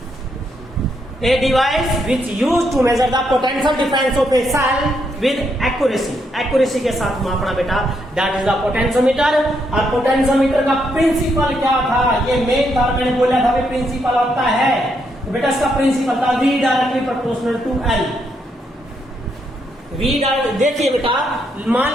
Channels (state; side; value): normal; both; correlation 0.77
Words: A device which used to measure the potential difference of a cell with accuracy. accuracy के साथ मापना बेटा, that is the potentiometer. और पोटेंशियोमीटर का प्रिंसिपल क्या था, ये मेन था, मैंने बोला था कि प्रिंसिपल होता है, तो बेटा इसका प्रिंसिपल था V directly proportional to L. V देखिए बेटा,